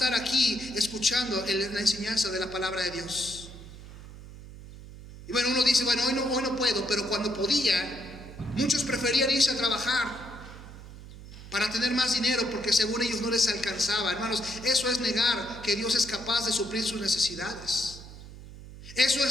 aquí escuchando la enseñanza de la palabra de Dios. Y bueno, uno dice, bueno, hoy no puedo, pero cuando podía, muchos preferían irse a trabajar para tener más dinero porque según ellos no les alcanzaba. Hermanos, eso es negar que Dios es capaz de suplir sus necesidades. Eso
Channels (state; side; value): noise; right; hum, 15 dB below the sound